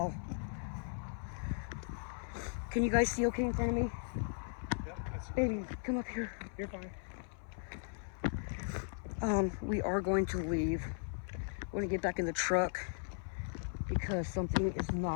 Can you guys see okay in front of me? Yep, I see. Baby, come up here. You're fine. We are going to leave. We're going to get back in the truck. because something is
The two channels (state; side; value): silent; right; 53 dB below the other